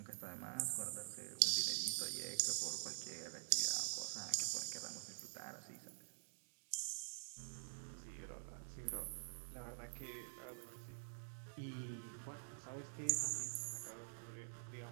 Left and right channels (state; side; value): silent; left; digital silence